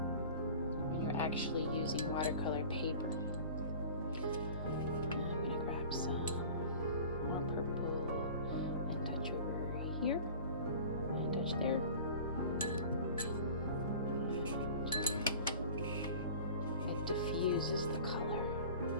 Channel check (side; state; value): both; inverted; correlation -0.41